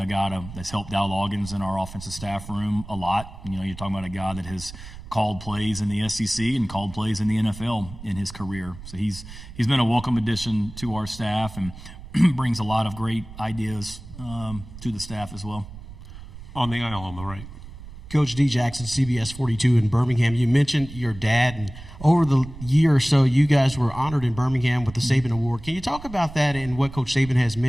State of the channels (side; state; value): right; noise; rumble, 15 dB below the sound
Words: guy that's helped Dow Loggins in our offensive staff room a lot. You're talking about a guy that has called plays in the SEC and called plays in the NFL in his career. So he's been a welcome addition to our staff and brings a lot of great ideas to the staff as well. On the aisle on the right. Coach D. Jackson, CBS 42 in Birmingham. You mentioned your dad, and over the year or so, you guys were honored in Birmingham with the Saban Award. Can you talk about that and what Coach Saban has